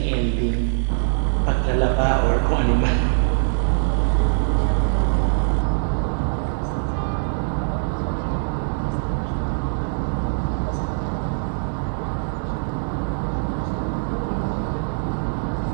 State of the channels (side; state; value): left; silent; digital silence